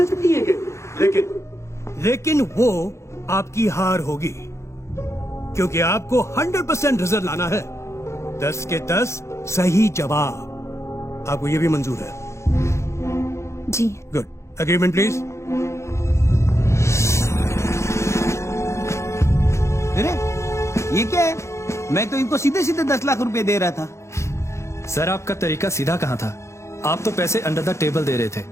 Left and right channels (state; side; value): late; right; 0.14 ms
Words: सकती है। लेकिन वो आपकी हार होगी, क्योंकि आपको 100% रिजल्ट लाना है। 10 के 10 सही जवाब। आपको ये भी मंजूर है? जी। गुड। Agreement please. अरे ये क्या है? मैं तो इनको सीधे सीधे 10 लाख रुपए दे रहा था। सर आपका तरीका सीधा कहाँ था? आप तो पैसे अंडर द टेबल दे रहे थे,